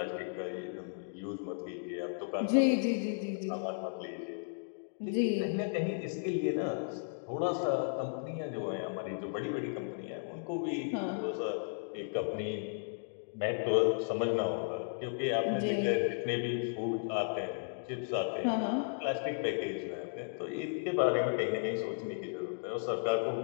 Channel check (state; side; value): silent; right; digital silence